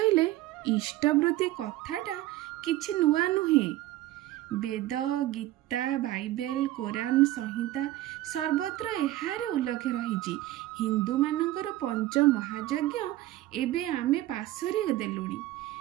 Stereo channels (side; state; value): left; quieter; 15.8 dB